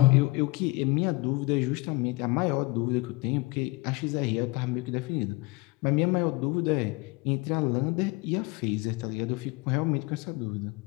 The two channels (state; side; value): quieter; right; 23.6 dB